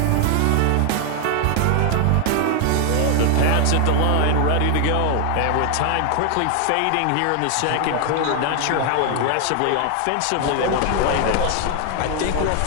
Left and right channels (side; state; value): both; different; correlation 0.00